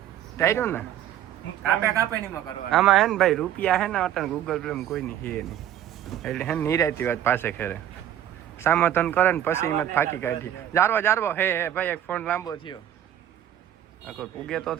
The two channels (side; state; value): left; quieter; 11.1 dB